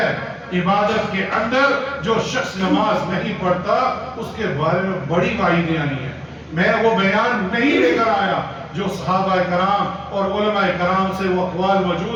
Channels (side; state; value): both; identical; correlation 1.00